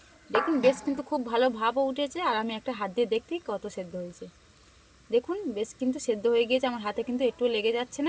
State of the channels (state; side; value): identical; both; correlation 1.00